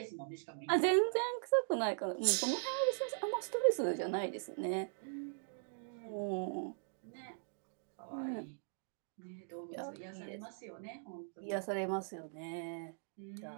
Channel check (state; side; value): silent; left; digital silence